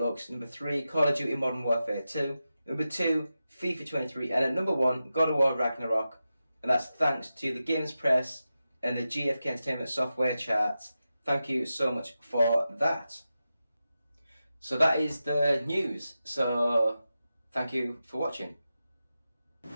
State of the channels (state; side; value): inverted; both; correlation -0.92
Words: number 3, Call of Duty Modern Warfare 2, number 2, FIFA 23, and at number 1, God of War Ragnarok. And that's thanks to the Games Press and the GFK Entertainment Software charts. Thank you so much for that. So that is the news. So thank you for watching.